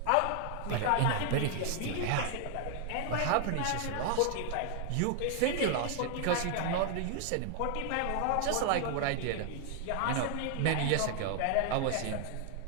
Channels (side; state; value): both; different; correlation 0.00